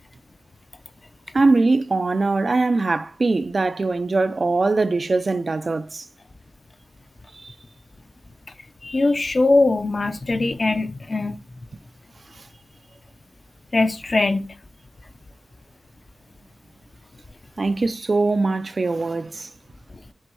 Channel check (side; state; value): both; normal; correlation 0.94